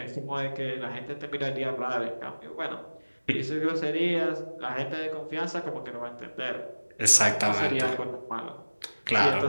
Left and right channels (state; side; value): inverted; both; correlation -1.00